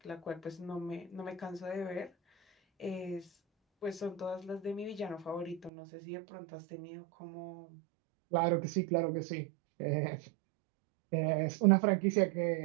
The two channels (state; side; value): drops out; left; at 5.7 s